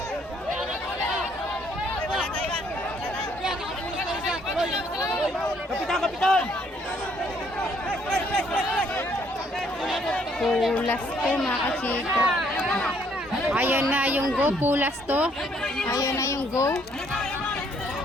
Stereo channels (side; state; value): both; normal; correlation 0.66